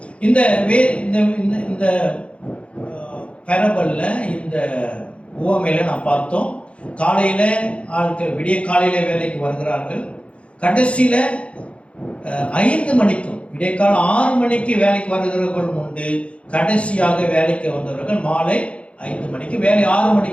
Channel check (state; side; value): late; right; 0.061 ms